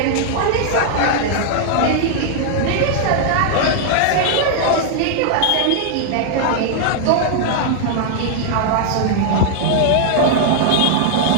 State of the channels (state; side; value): different; both; correlation -0.01